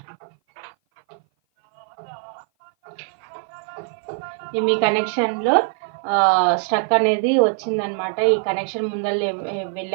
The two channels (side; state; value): left; silent; 57 dB below the other